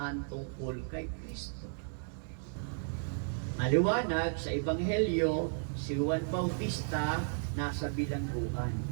tungkol kay Kristo? Maliwanag sa Ebanghelyo, si Juan Bautista nasa bilangguan.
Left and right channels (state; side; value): silent; left; digital silence